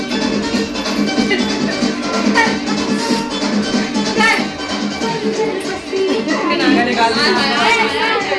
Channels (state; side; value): identical; both; correlation 1.00